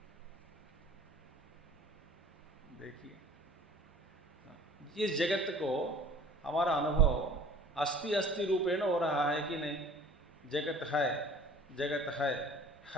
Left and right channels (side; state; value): both; normal; correlation 0.48